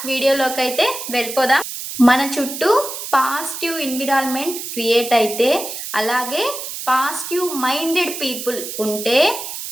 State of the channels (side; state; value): right; noise; hiss, 7 dB below the sound